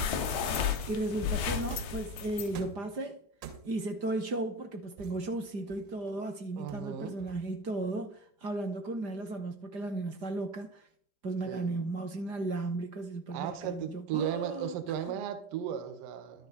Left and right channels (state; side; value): late; left; 4.8 ms